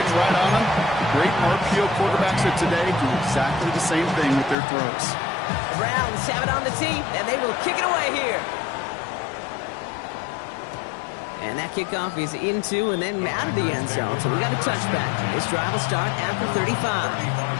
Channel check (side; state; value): right; drops out; at 4.5 s